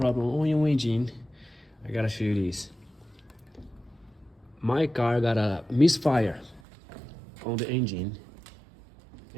on your engine, I gotta show you this. My car got a misfire on the engine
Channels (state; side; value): drops out; left; at 6.6 s